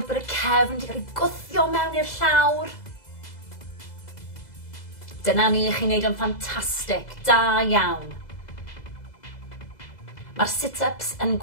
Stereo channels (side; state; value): right; late; 2.0 ms